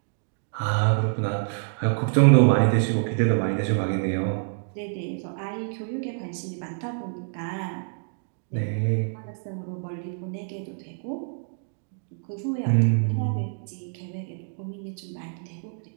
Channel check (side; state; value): left; silent; digital silence